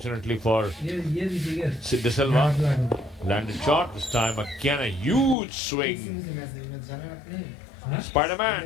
for De Silva, landed short. This time again a huge swing.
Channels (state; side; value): drops out; right; at 5.4 s